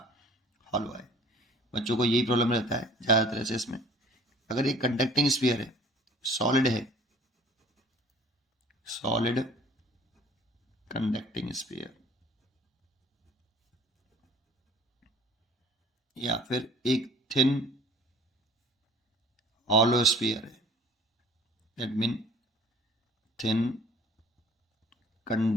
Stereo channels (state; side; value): normal; both; correlation 0.51